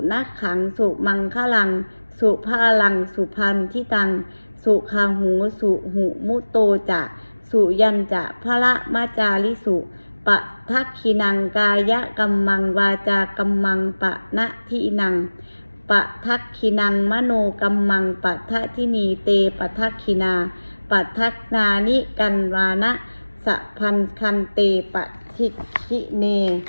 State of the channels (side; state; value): both; inverted; correlation -1.00